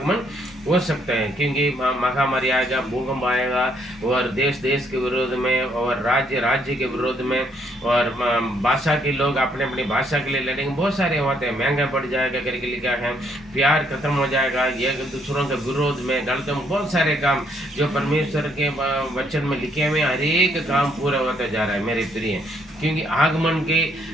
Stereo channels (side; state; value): both; normal; correlation 0.70